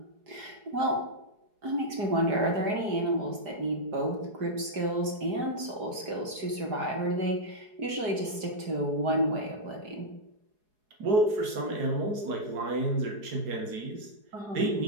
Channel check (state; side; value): late; left; 4.8 ms